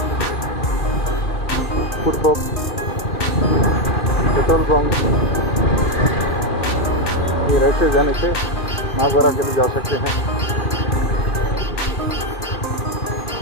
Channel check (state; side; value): late; right; 2.4 ms